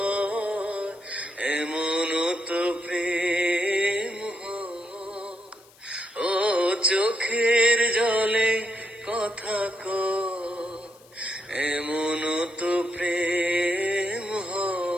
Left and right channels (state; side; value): noise; left; hiss, 27 dB below the sound